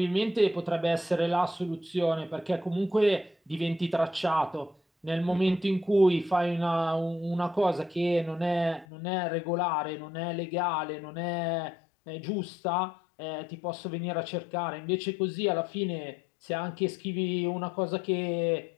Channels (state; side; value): drops out; right; at 8.8 s